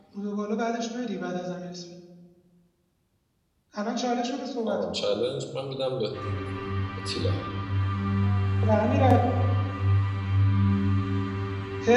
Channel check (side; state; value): both; identical; correlation 1.00